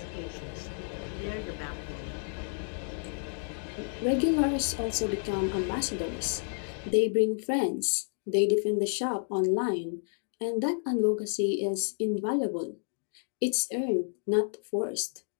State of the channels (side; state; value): right; silent; 57 dB below the other